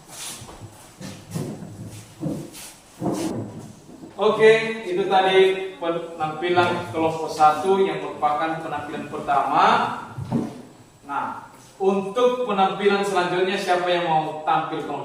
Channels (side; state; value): both; identical; correlation 1.00